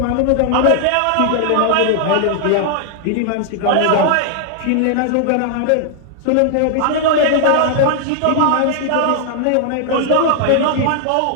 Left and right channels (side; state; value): both; different; correlation 0.00